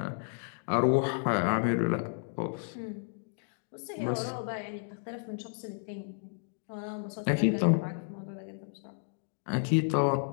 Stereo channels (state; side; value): silent; right; digital silence